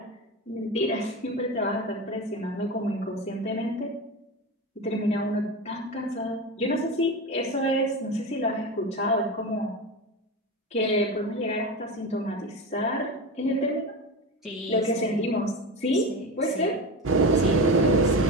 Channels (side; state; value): both; normal; correlation 0.22